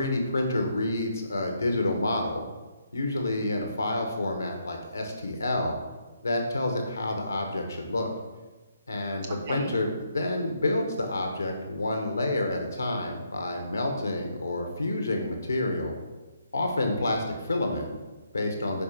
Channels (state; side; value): inverted; both; correlation -0.76